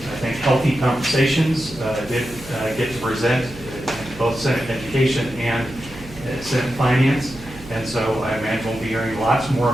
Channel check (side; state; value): right; noise; hum, 17 dB below the sound